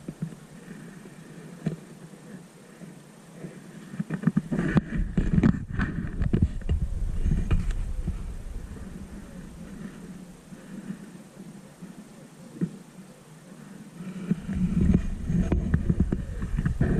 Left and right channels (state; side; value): identical; both; correlation 1.00